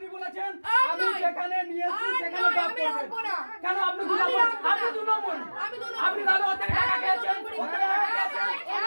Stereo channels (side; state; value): both; inverted; correlation -1.00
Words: বলেছেন আমি যেখানে নিয়েছি সেখানে ড্রপ করবেন। কেন আপনি দু নম্বর? আপনি দু নম্বর। আপনি তাহলে ওদের টাকা খেয়েছেন।